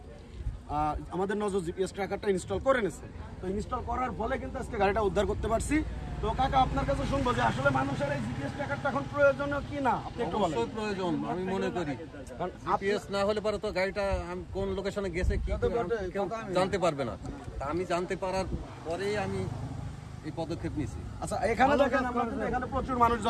আমাদের নজর জিপিএস ট্র্যাকারটা ইনস্টল করে নিয়েছে। তো ইনস্টল করার ফলে কিন্তু আজকে গাড়িটা উদ্ধার করতে পারছি। তো কাকা আপনার কাছে শুনবো যে আসলে মানুষের এই জিপিএস ট্র্যাকারটা এখন প্রয়োজনীয় কি না, আপনি একটু বলেন। অবশ্যই প্রয়োজন আমি মনে করি, কারণ জিপিএস না হলে পরে তো গাড়িটা কোন লোকেশনে গেছে কি কেউ জানতে পারবে না। আমি জানতে পারার পরেই আমি এই পদক্ষেপ নিয়েছি। আচ্ছা এখানে দেখেন, এখানে প্রচুর মানুষ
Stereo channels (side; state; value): both; identical; correlation 1.00